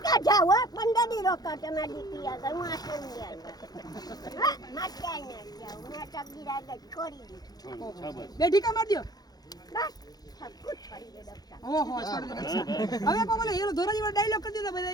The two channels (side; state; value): right; late; 0.19 ms